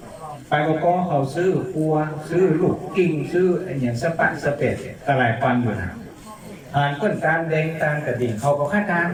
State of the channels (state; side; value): identical; both; correlation 1.00